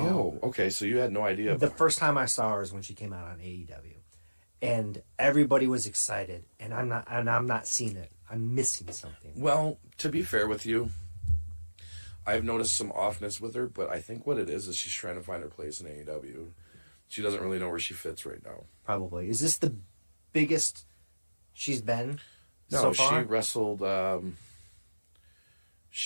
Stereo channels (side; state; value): both; inverted; correlation -1.00